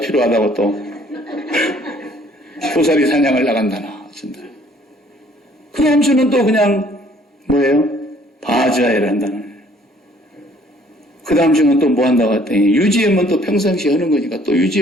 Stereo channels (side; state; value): both; normal; correlation 0.59